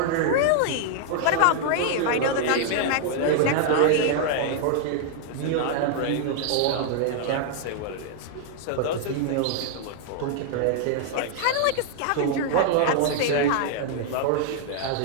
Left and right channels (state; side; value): different; both; correlation 0.00